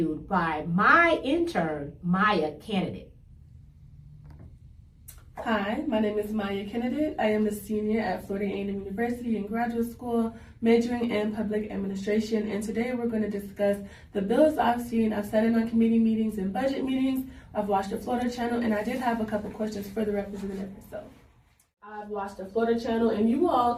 by my intern, Maya Candidate. Hi, my name is Maya Candidate. I am a senior at Florida A&M University in graduate school, majoring in public administration, and today we're going to discuss the bills I've seen. I've sat in on committee meetings and budget meetings. I've watched the Florida channel, and I did have a couple questions for the representative herself. I've watched the Florida channel, and you all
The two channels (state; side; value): identical; both; correlation 1.00